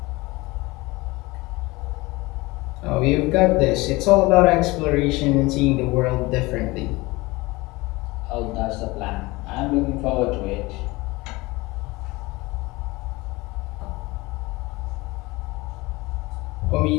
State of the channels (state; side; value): quieter; right; 22.3 dB